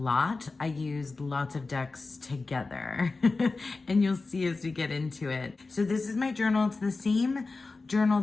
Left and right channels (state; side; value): quieter; right; 3.8 dB